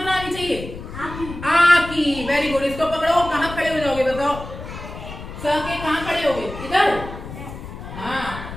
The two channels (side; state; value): left; noise; rumble, 11 dB below the sound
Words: आनी चाहिए? आ की। वेरी गुड, इसको पकड़ो। कहाँ खड़े हो जाओगे बताओ? स के कहाँ खड़े होगे? इधर। हाँ,